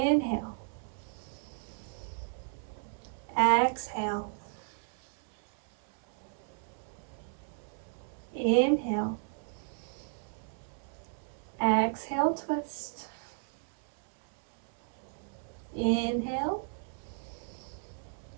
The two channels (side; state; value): left; silent; 55 dB below the other